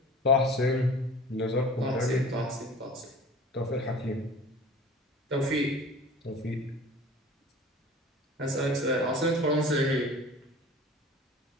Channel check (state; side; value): normal; both; correlation 0.41